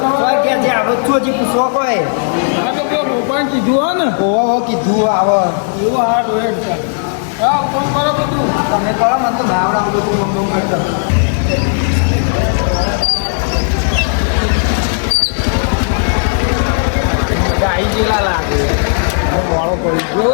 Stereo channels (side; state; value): right; silent; digital silence